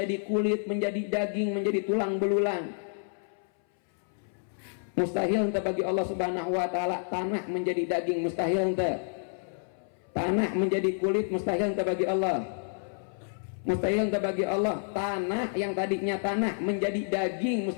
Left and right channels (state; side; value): silent; right; 58 dB below the other